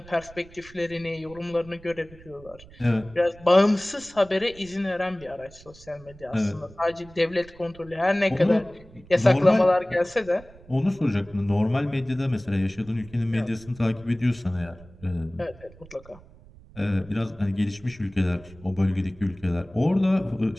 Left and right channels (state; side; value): noise; right; rumble, 22 dB below the sound